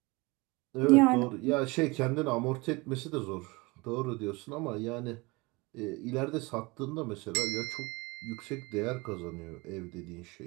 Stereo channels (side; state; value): left; quieter; 25.0 dB